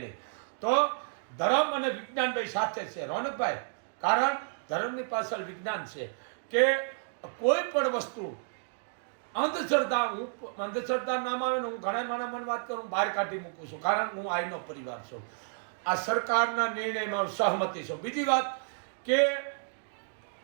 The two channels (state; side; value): silent; left; digital silence